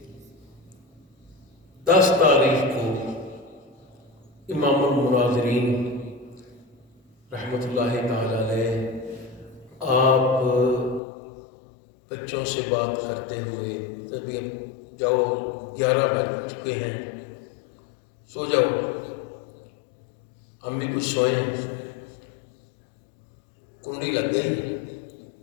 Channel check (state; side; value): drops out; right; at 11.0 s